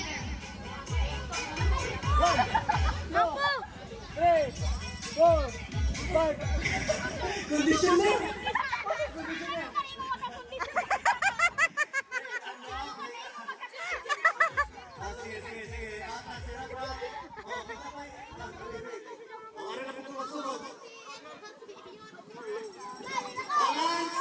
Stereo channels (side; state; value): both; identical; correlation 1.00